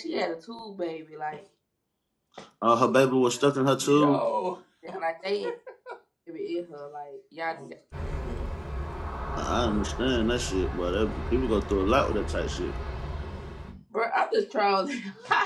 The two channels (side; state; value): both; identical; correlation 1.00